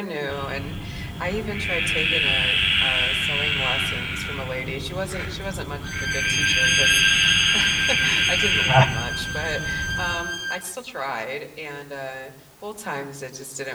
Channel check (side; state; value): both; identical; correlation 1.00